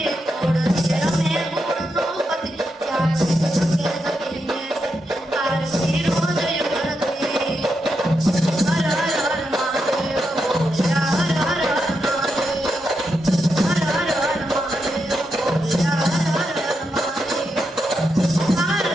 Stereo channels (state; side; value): normal; both; correlation 0.84